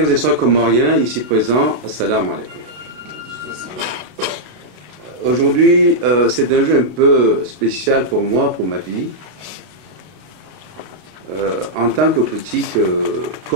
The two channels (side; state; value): left; late; 32 ms